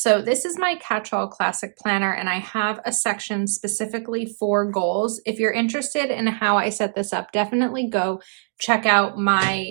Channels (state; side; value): silent; left; digital silence